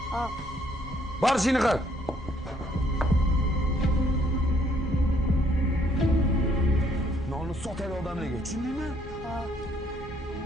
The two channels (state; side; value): normal; both; correlation 0.66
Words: Hop. Bor ishingni qil. Nonni sotadi odamlarga, tushundingmi? Hop.